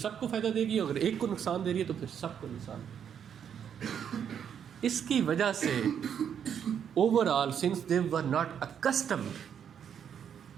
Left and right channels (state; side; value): quieter; left; 8.3 dB